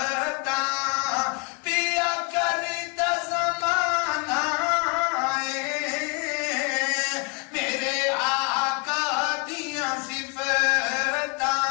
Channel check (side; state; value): right; quieter; 34.8 dB